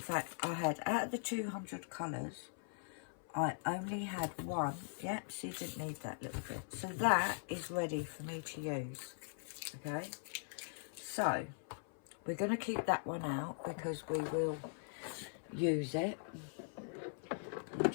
I had, out of the 200 colours, I only had one. Yep, so you didn't need that little bit. So that is ready for me to use. Okay, so we're going to keep that one out because we will use it. I'm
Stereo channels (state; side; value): silent; right; 50 dB below the other